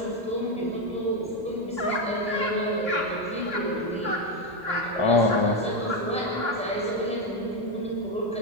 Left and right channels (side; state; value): both; normal; correlation 0.09